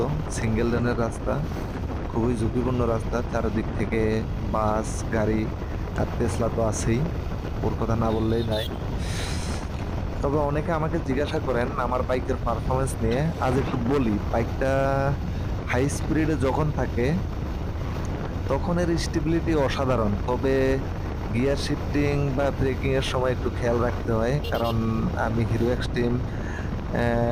সিঙ্গেল লেনের রাস্তা খুবই ঝুঁকিপূর্ণ রাস্তা, চারিদিক থেকে বাস গাড়ি আর টেসলা তো আছেই, ওর কথা না বললেই নাই। তবে অনেকে আমাকে জিজ্ঞাসা করেন আমার বাইকের পারফরমেন্স নিয়ে। আজ একটু বলি, বাইকটা হাই স্পিডে যখন থাকে তখন এর স্টেবিলিটি অসাধারণ, তবে গিয়ার শিফটিং বা ব্রেকিং এর সময় একটু খেয়াল রাখতে হয়, কারণ আমি হিরো এক্সট্রিম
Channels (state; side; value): identical; both; correlation 1.00